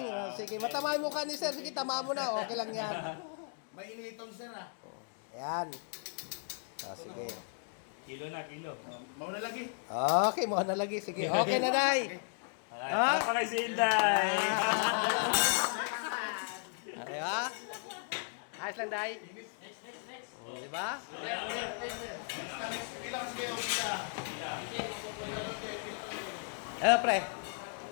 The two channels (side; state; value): right; silent; 54 dB below the other